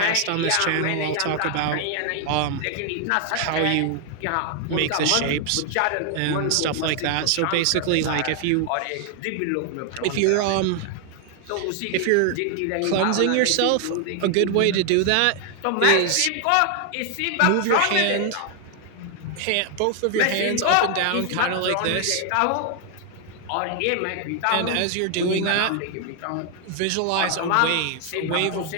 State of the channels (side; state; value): both; different; correlation 0.00